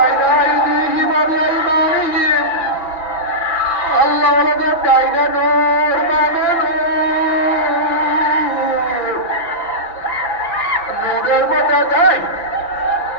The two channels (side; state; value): right; late; 5.9 ms